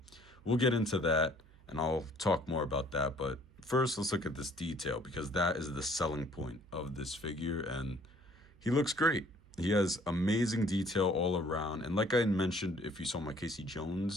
we'll get into that and I'll talk more about that, but first let's look at this detail because that is the selling point of this figure, and he looks great. He has amazing detail all around. And like I mentioned, if you saw my Casey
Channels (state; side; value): noise; right; hum, 25 dB below the sound